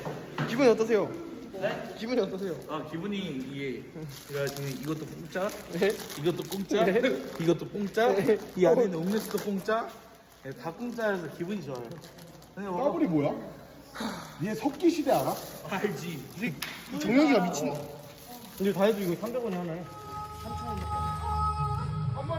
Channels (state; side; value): identical; both; correlation 1.00